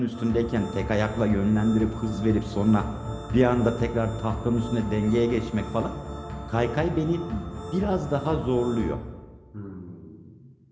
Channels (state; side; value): identical; both; correlation 1.00